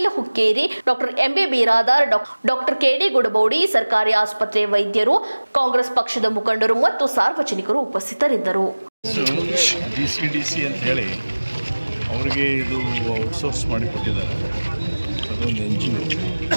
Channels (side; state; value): both; inverted; correlation -1.00